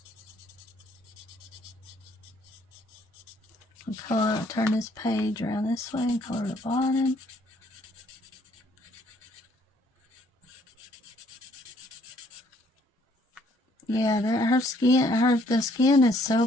Color, turn this page around this way and color the bottom. Yeah, her skin, the skin is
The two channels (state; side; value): normal; both; correlation 0.64